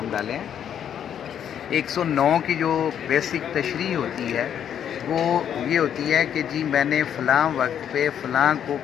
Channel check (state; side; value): quieter; right; 9.2 dB